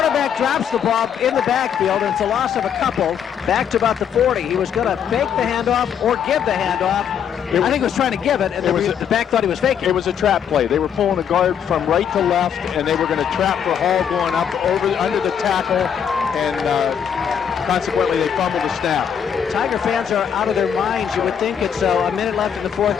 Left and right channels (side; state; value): right; quieter; 8.2 dB